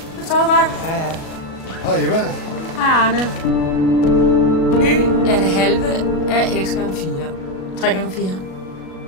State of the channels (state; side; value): late; right; 37 ms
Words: Du sover godt? Ja. Hej, Eva. Hej, Arne. Y er det halve af x gange 4. 3 gange 4.